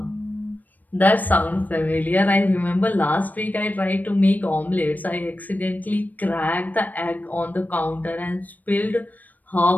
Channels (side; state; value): right; late; 0.083 ms